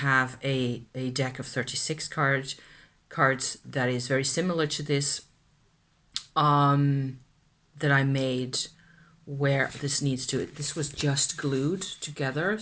a deck of 36 cards that is very similar to this that I made where this needs to, this was just glued together,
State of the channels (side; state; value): both; identical; correlation 1.00